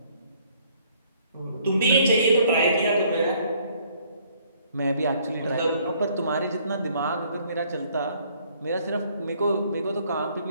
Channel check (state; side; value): inverted; both; correlation -0.62